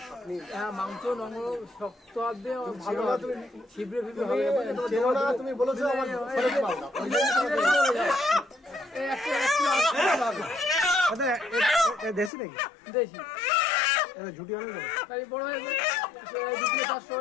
আপনি। হ্যাঁ মাংস নরম শক্ত হবে, ভালো ছিবড়ে ফিবড়ে হবে। তুমি বলেছো আমার দেশি নাকি? দেশি ঝুটি অনেক বড় হয়ে যাবে, 2 কিলো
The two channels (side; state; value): right; drops out; at 12.3 s